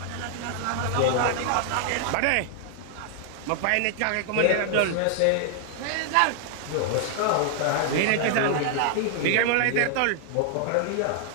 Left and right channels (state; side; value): different; both; correlation 0.00